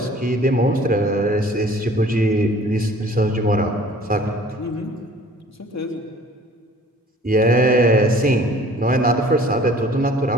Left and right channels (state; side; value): normal; both; correlation 0.51